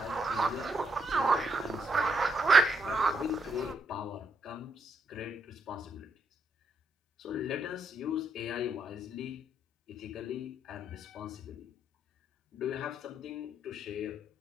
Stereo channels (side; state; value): both; normal; correlation 0.77